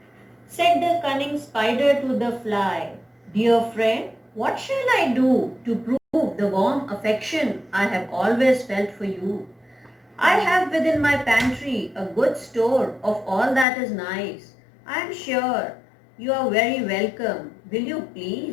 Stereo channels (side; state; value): right; drops out; at 13.7 s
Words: Said the cunning spider to the fly, dear friend, what shall I do to prove the warm affection I have always felt for you? I have within my pantry a good store of all that is nice. I am sure you are very welcome. Will you